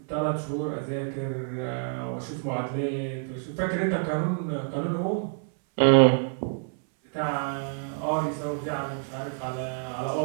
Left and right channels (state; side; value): silent; left; 60 dB below the other